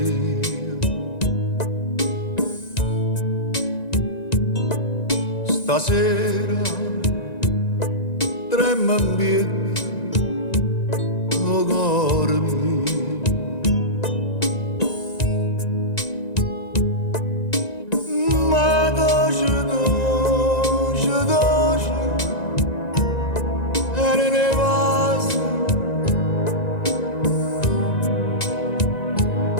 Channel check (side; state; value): right; late; 1.9 ms